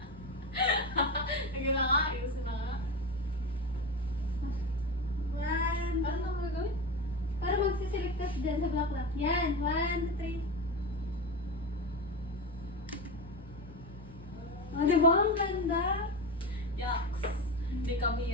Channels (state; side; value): normal; both; correlation 0.21